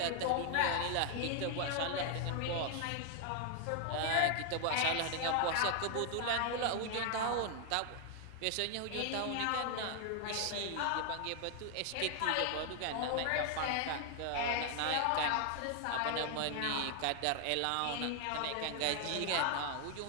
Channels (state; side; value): different; both; correlation 0.00